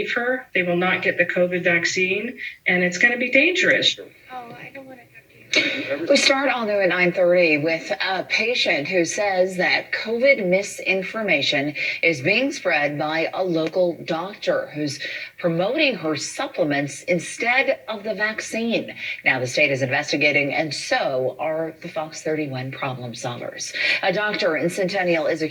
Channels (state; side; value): identical; both; correlation 1.00